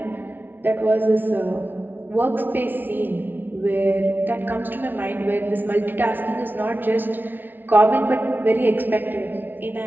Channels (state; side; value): late; left; 0.091 ms